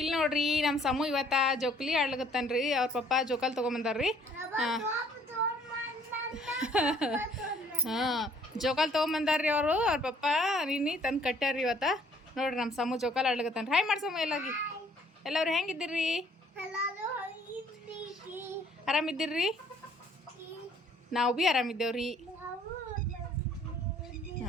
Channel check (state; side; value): normal; both; correlation 0.61